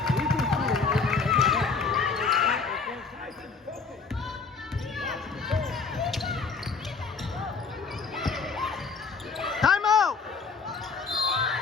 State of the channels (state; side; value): quieter; right; 4.9 dB